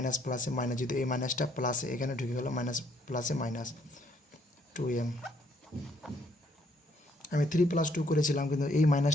প্লাসে মাইনাস, যেহেতু এই মাইনাসটা প্লাসে এখানে ঢুকে গেলো মাইনাস প্লাসে মাইনাস 2m। আমি 3 প্লাস 2 করেছিলাম কিন্তু এই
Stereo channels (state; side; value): normal; both; correlation 0.68